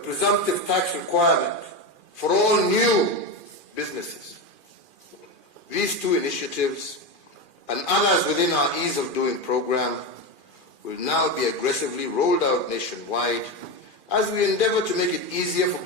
tax requirement for all new businesses. These two initiatives and others within our Ease of Doing program will now be aggressively rolled out nationwide as we endeavor to make it easier for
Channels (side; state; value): right; late; 2.4 ms